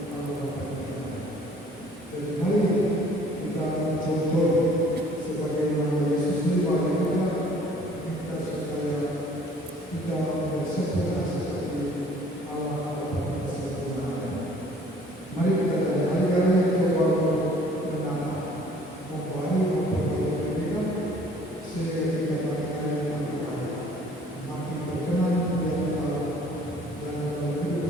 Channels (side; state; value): both; normal; correlation 0.55